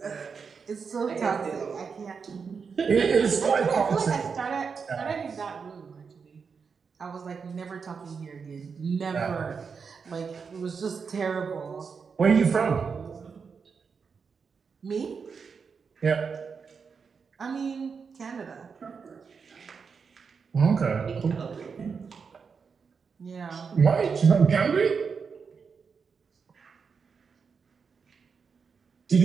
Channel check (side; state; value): left; quieter; 5.7 dB